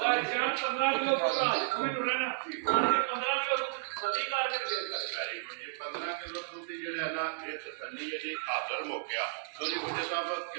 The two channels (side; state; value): left; silent; 56 dB below the other